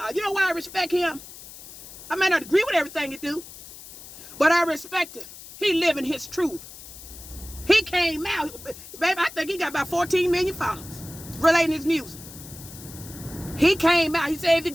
You know why I respect him? I may not agree with everything he do, but I respect him. He living his truth. He came out, baby, I think he got about 14 million followers relating his music. He came out. He said, if you're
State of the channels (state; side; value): noise; left; hiss, 16 dB below the sound